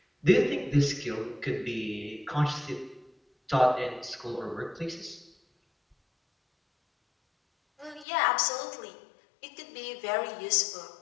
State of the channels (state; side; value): drops out; right; at 8.1 s